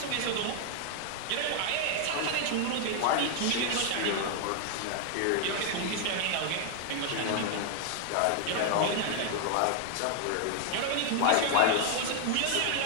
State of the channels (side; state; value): both; different; correlation 0.00